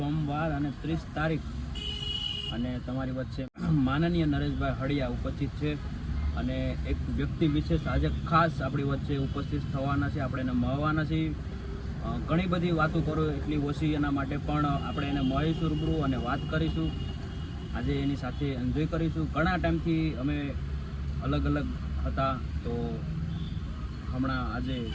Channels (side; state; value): both; identical; correlation 1.00